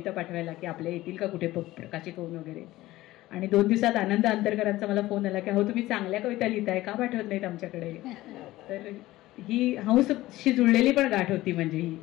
पाठवायला की आपल्या येतील का कुठे प्रकाशित होऊन वगैरे. आणि 2 दिवसात आनंद अंतरकरांचा मला फोन आला की अहो तुम्ही चांगल्या कविता लिहिताय, का पाठवत नाहीत आमच्याकडे. तर ही हंसशी जुळलेली पण गाठ होती. म्हणजे ही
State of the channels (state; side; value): quieter; right; 17.0 dB